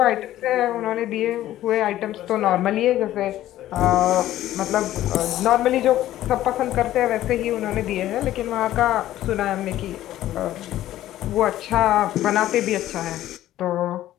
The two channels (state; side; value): quieter; right; 13.7 dB